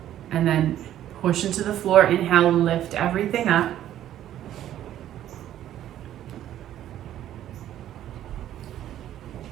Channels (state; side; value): quieter; left; 11.9 dB